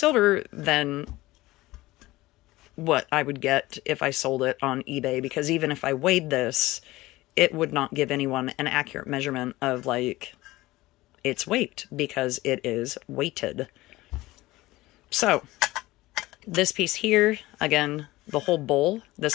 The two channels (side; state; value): right; quieter; 18.6 dB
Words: than what I would get if I sold it on eBay, because even if I weighed this, it would not give anyone an accurate measurement of like its weight, because it is weighted. So this piece here, again, the whole bowl,